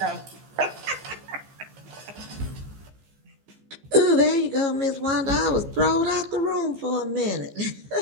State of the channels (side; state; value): left; late; 15 ms